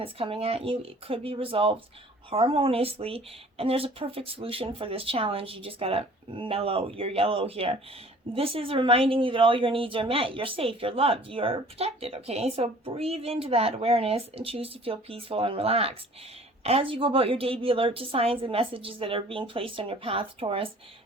coming at you, it could be resolved harmoniously, and there's a perfect solution for this challenge. You just gotta mellow your yellow here. This is reminding you that all your needs are met. You're safe, you're loved, you're protected, okay? So breathe into that awareness and choose to feel peaceful and relaxed. As you go about your day, be alert to signs and messages that are being placed on your path, Taurus.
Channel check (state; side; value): normal; both; correlation 0.50